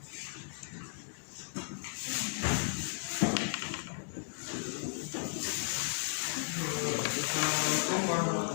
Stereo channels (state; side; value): silent; right; digital silence